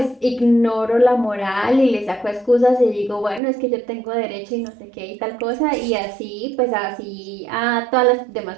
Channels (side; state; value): left; drops out; at 3.4 s